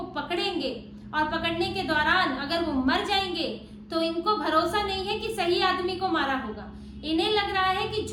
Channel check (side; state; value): both; identical; correlation 1.00